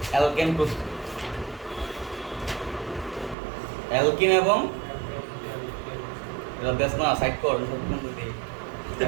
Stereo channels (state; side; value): drops out; left; at 3.4 s